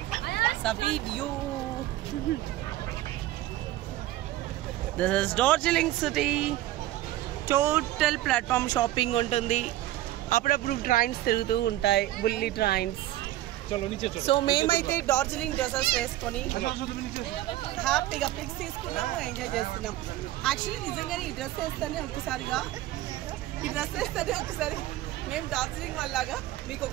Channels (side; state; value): left; quieter; 15.2 dB